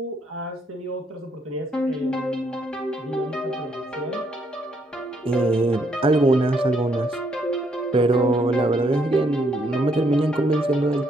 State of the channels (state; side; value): normal; both; correlation 0.72